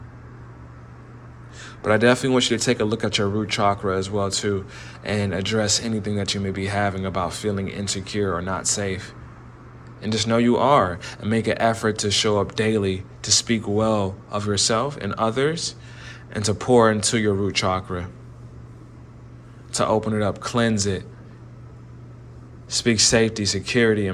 But I definitely want you to take a look at your root chakra as well too, and address anything that you may be having about feeling insecure or not safe. And just know you are, and make an effort to show up daily, to speak well of yourself and others, and to pour into your root chakra, to open it up, cleanse it, speak safety, security,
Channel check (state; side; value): identical; both; correlation 1.00